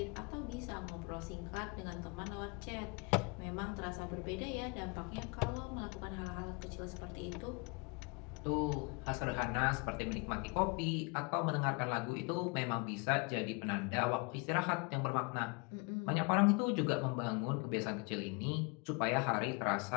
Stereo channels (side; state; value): right; quieter; 30.9 dB